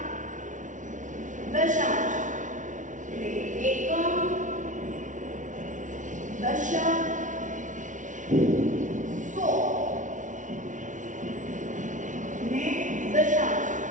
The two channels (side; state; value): left; late; 0.37 ms